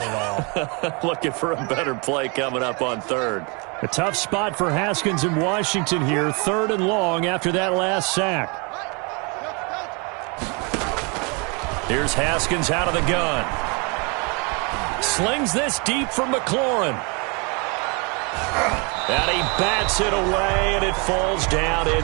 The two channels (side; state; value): left; quieter; 31.8 dB